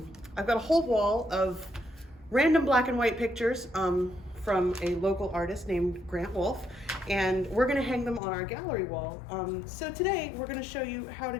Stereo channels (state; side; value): drops out; right; at 8.2 s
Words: got a whole wall of random black and white pictures from a local artist named Grant Wolf, and we're going to hang them on our gallery wall. So today we're going to show you how to